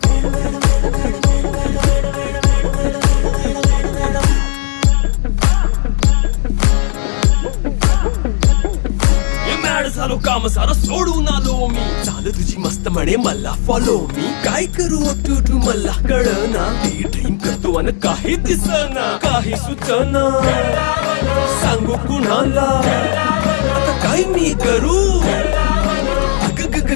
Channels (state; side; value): silent; right; 59 dB below the other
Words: झालो काम सारं सोडून आलो मी चाल तुझी मस्त म्हणे मला फॉलो मी काय करू टू मला कळना ड्रीम करतो आणि काही दिसना काही सुचना सांगू कुणाला आता काय मी करू ग ग